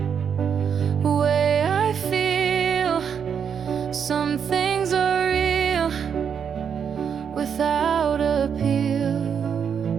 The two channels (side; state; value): left; quieter; 7.4 dB